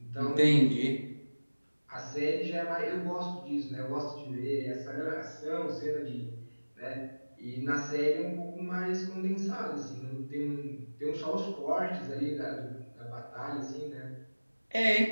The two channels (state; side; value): inverted; both; correlation -1.00